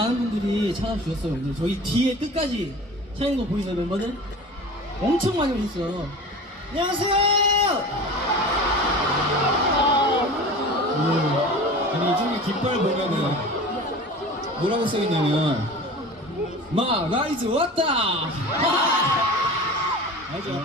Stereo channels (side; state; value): both; normal; correlation 0.36